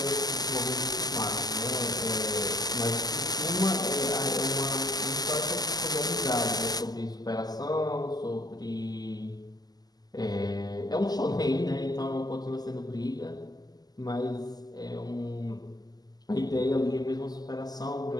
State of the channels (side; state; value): right; late; 0.19 ms